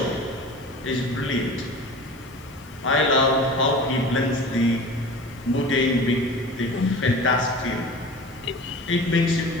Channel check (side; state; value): both; normal; correlation 0.38